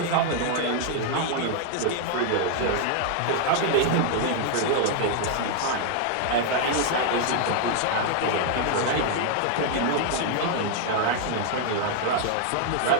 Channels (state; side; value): different; both; correlation 0.00